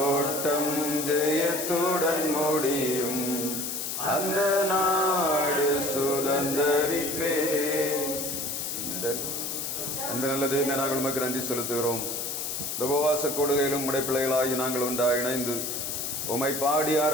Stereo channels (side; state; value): left; noise; hiss, 3 dB below the sound